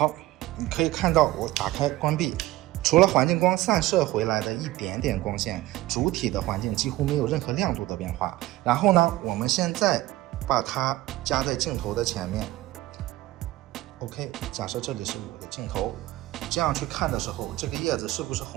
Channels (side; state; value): left; quieter; 17.2 dB